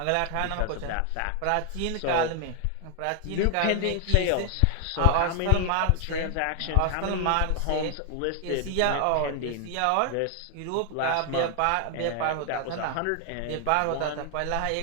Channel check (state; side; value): different; both; correlation 0.00